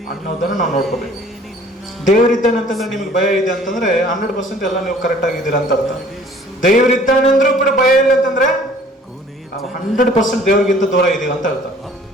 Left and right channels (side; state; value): both; normal; correlation 0.53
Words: ಅನ್ನೋದನ್ನು ನಾವು ನೋಡ್ಕೋಬೇಕು. ದೇವರಿದ್ದಾನೆ ಅಂತಂದ್ರೆ ನಿಮ್ಗೆ ಭಯ ಇದೆ ಅಂತಂದ್ರೆ 100% ಎಲ್ಲ ನೀವು ಕರೆಕ್ಟ್ ಆಗಿದ್ದೀರಾ ಅಂತ ಅರ್ಥ. ದೇವರಿದ್ದಾನೆ ಅಂದ್ರೂ ಕೂಡ ಭಯ ಇಲ್ಲ ಅಂತಂದ್ರೆ ನಾವು 100% ದೇವರಿಗಿಂತ ದೂರ ಇದೀವಿ ಅಂತ ಅರ್ಥ.